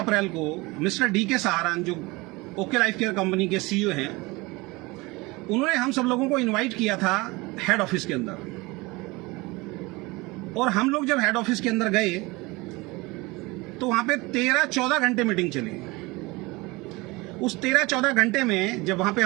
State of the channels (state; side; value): quieter; left; 23.4 dB